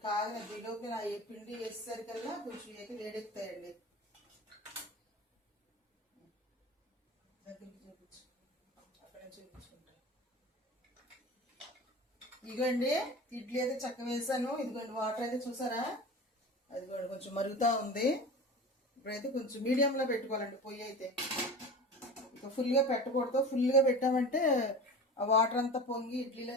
కాగిన దిలోకి నా ఏ పిండి వేసేసరికల్లా కొంచెం అయితే వేడెక్కుతాయండి. దగ్గరికి చూపించు, అక్కడ చూపించుకుంటా. ఇదిగోండి ఇడ్లీ అయితే చక్క వేసాను. ఇదిగోండి వాటర్ అయితే చూసారా, అదిగోండి కొంచెం మరుగుతూ ఉంది. ఇప్పుడైతే కొంచెం మీడియంలో పెట్టుకోవాలండి పొయ్యి అయితే. ఇక ఫుల్గా పెట్టకూడదు. ఫుల్గా పెట్టామంటే ఆ వాటర్ అంతా పొంగి ఇడ్లీలో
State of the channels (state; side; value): normal; both; correlation 0.33